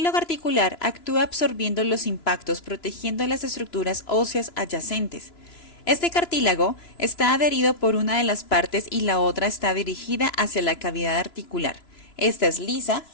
articular actúa absorbiendo los impactos, protegiendo las estructuras óseas adyacentes. Este cartílago está adherido por una de las partes y la otra está dirigida hacia la cavidad articular. Esta es lisa,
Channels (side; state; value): right; late; 2.9 ms